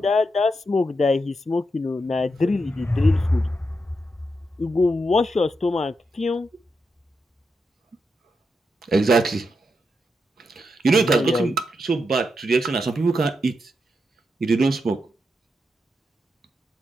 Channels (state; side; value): normal; both; correlation 0.85